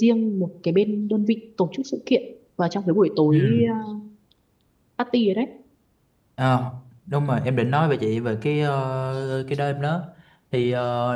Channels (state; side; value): identical; both; correlation 1.00